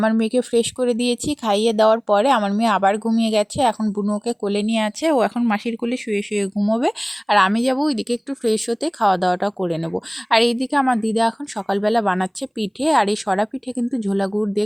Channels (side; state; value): both; identical; correlation 1.00